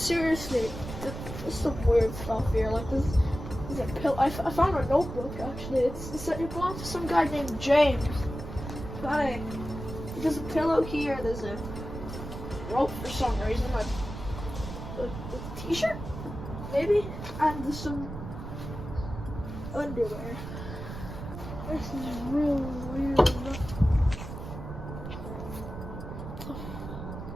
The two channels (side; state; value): right; noise; rumble, 9 dB below the sound